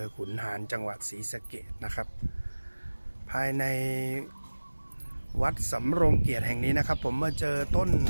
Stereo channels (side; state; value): both; inverted; correlation -1.00